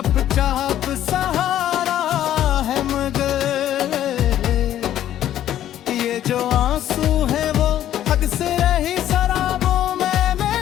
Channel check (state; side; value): quieter; right; 11.8 dB